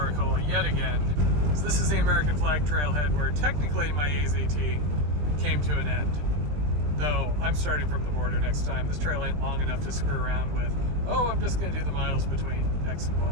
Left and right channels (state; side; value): late; left; 20 ms